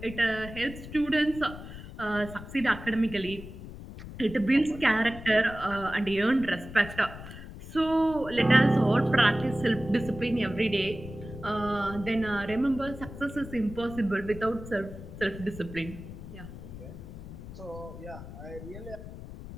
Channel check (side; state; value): left; noise; rumble, 12 dB below the sound